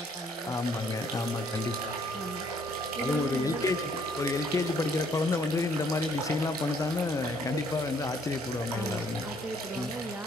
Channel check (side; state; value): both; normal; correlation 0.64